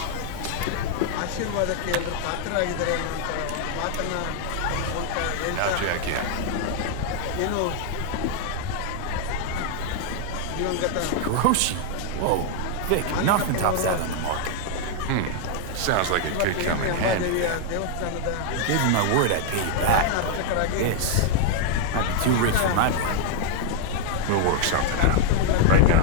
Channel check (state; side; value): different; both; correlation 0.00